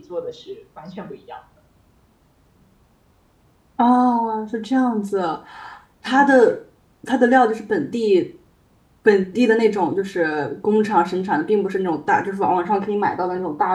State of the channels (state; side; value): identical; both; correlation 1.00